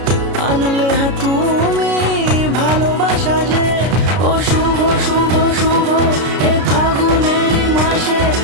আনলে তুমি ভালোবাসা যে। ও শুভ শুভ শুভ এ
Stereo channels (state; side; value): late; left; 32 ms